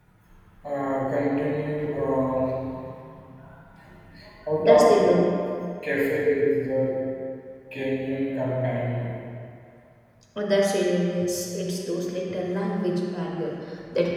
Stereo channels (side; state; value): both; identical; correlation 1.00